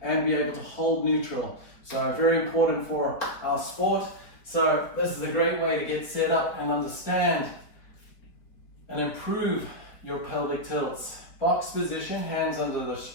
and be able to hold neutral. So very important for our sport. So this is a great way to get set up and understand and improve your pelvic tilts. Box position, hands under the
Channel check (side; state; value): right; late; 4.2 ms